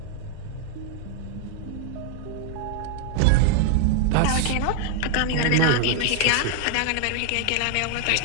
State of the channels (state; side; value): different; both; correlation 0.00